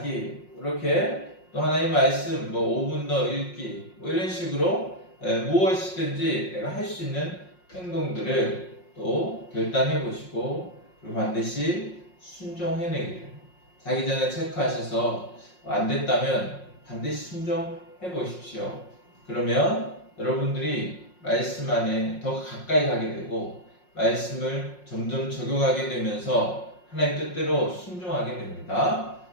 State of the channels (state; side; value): late; right; 5.5 ms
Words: 이렇게 또 하나님 말씀 5분 더 읽기, 이런 식으로 무엇이든지 내가 할 수 있는 행동들을 또 결단해 보시고, 그리고 반드시 순종해내기를, 자기 전에 체크하셔서 안 됐다면 반드시 순종해 보십시오. 그러면 여러분들이 말씀 안에 더 가까이 가게 되고 말씀을 점점 적용하게 되면서 하나님 뜻대로 순종하게 됩니다.